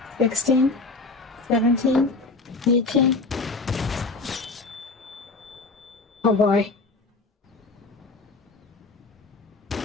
16, 17, 18. Oh boy.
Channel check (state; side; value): quieter; right; 3.6 dB